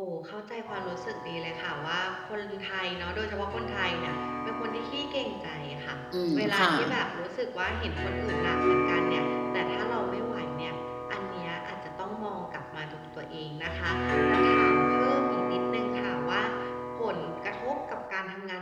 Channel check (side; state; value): both; identical; correlation 1.00